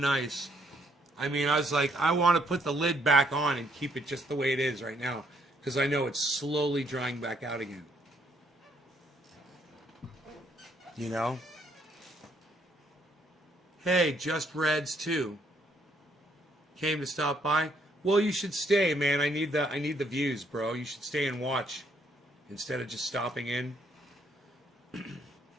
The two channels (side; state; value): both; normal; correlation 0.70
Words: I mean, I was like, I want to put the lid back on and keep it just the way it is right now, because I know it's slowly drying back out again. You know? Hey, Just Reds too. Came to stop by. Well, you should stay, man. I need the views, bro. You should stay and watch instead of just stopping in.